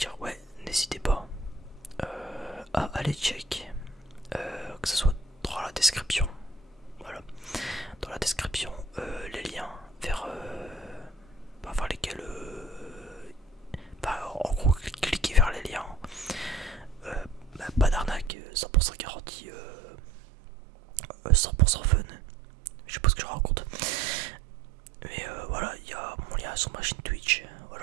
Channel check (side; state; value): left; drops out; at 18.3 s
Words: Ouais, n'hésitez pas à aller check. Que ce soit dans la description. Voilà. Dans la description, les liens vers lesquels. En gros, cliquez vers les liens. Pas d'arnaque, 100% garantie, 100% fun. Je sais pas ce que je raconte. Mais voilà, il y a mon lien sur ma chaîne Twitch.